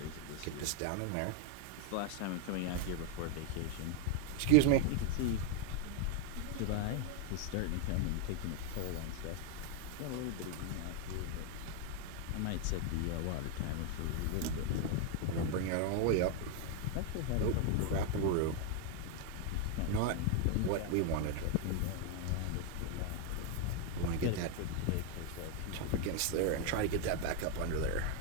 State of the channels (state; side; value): different; both; correlation 0.01